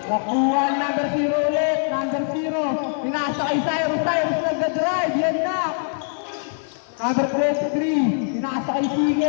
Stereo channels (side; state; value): right; silent; digital silence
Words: nakuha ang number 0 ulit. Number 0, pinasa kay Cyrus nagda-drive. Yan na. Number 23, pinasa kay